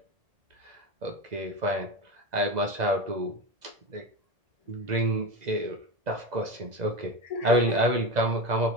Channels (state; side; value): late; left; 2.0 ms